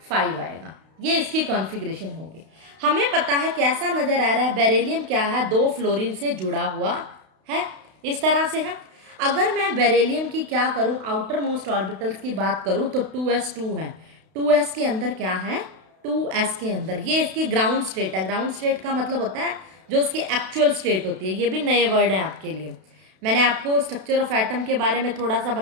आएगा। ये इसकी कॉन्फ़िगरेशन होगी। हमें पता है कैसा नजर आ रहा है, बेरिलियम क्या है, 2 फ्लोरीन से जुड़ा हुआ है, इस तरह से है। अगर मैं बेरिलियम की क्या करूं, आउटर मोस्ट ऑर्बिटल्स की बात करूं तो 2s2 है। 2s के अंदर क्या है, 2s के अंदर ये इसकी ग्राउंड स्टेट है। ग्राउंड स्टेट का मतलब होता है जो उसकी एक्चुअल स्टेट होती है। ये भी नए वर्ड है आपके लिए। मैंने आपको स्ट्रक्चर ऑफ एटम के बारे में थोड़ा सा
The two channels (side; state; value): left; late; 32 ms